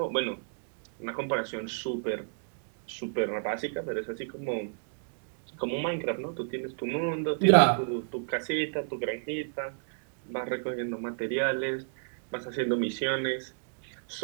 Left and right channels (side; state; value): left; silent; digital silence